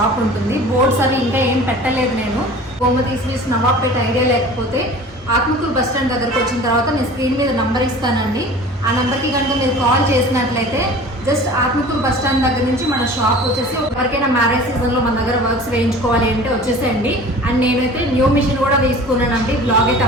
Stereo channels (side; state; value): both; normal; correlation 0.42